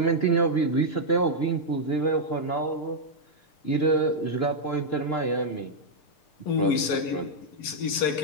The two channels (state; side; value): late; right; 6.7 ms